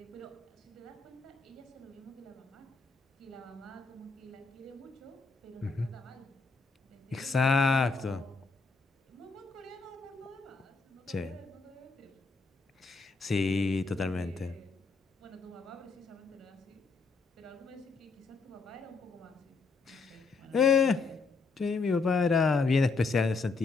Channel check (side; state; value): right; quieter; 4.2 dB